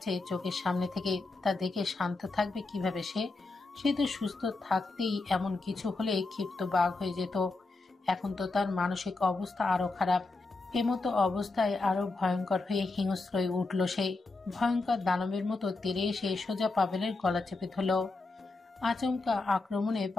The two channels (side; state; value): right; quieter; 3.5 dB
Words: চোখের সামনে থেকে। তা দেখে শান্ত থাকবে কিভাবে সে? সে তো সুস্থ থাকতেই এমন কিছু হলে ক্ষিপ্ত বাঘ হয়ে যেত। এখন তো তার মানসিক অবস্থা আরো খারাপ। এমতো অবস্থায় আরো ভয়ঙ্কর হয়ে হিংস্র হয়ে উঠল সে। ভয়ঙ্কর দানবের মতো তেড়ে এসে সোজা পাভেলের গলা চেপে ধরল। আচমকা আক্রমণে